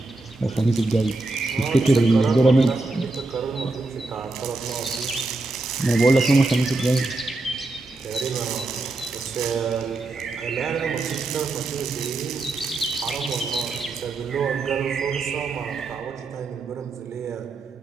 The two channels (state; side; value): quieter; left; 3.2 dB